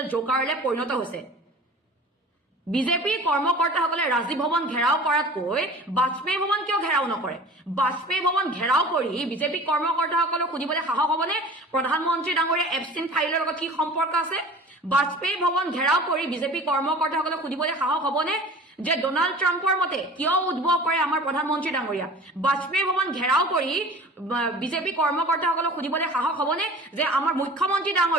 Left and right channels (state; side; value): normal; both; correlation 0.41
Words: জোকাৰলৈ পৰিণত হৈছে। বিজেপি কৰ্মকৰ্তাসকলে ৰাজীৱ ভৱন ঘেৰাও কৰাতকৈ বাজপেয়ী ভৱন কিয় ঘেৰাও নকৰে? বাজপেয়ী ভৱন ঘেৰাও কৰি বিজেপি কৰ্মকৰ্তাসকলক সুধিবলৈ সাহস হ'বনে প্ৰধানমন্ত্ৰী ডাঙৰীয়া এপষ্টিন ফাইলৰ লগত কি সম্পৰ্ক আছে? বাজপেয়ী ভৱন ঘেৰাও কৰি বিজেপি কৰ্মকৰ্তাসকলক সুধিবলৈ সাহস হ'বনে যে ডোনাল্ড ট্ৰাম্পৰ মতে কিয় উদ্ভৱ কৰে আমাৰ প্ৰধানমন্ত্ৰী ডাঙৰীয়া? বাজপেয়ী ভৱন ঘেৰাও কৰি বিজেপি কৰ্মকৰ্তাসকলক সুধিবলৈ সাহস হ'বনে যে আমাৰ মুখ্যমন্ত্ৰী